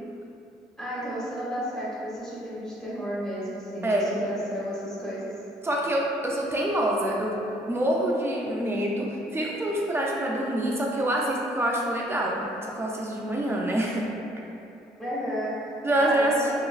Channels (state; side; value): normal; both; correlation 0.62